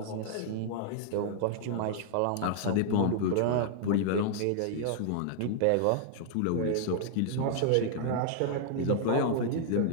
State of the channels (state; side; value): different; both; correlation -0.01